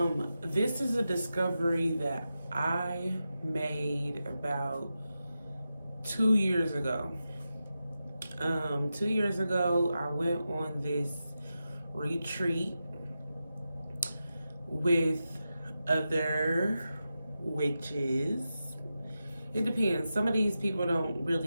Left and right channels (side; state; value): both; inverted; correlation -0.90